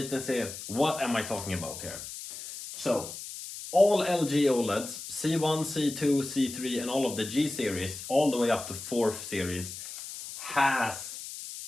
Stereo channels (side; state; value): left; noise; hiss, 10 dB below the sound